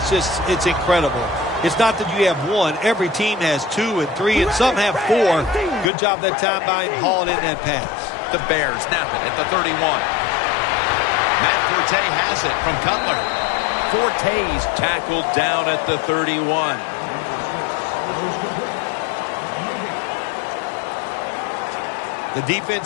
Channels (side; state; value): right; drops out; at 5.9 s